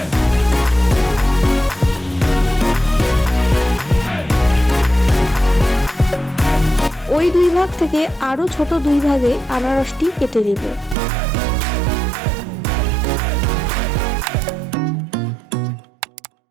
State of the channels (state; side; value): drops out; left; at 11.0 s